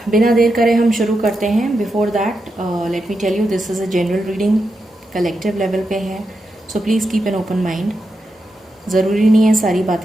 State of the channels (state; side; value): normal; both; correlation 0.87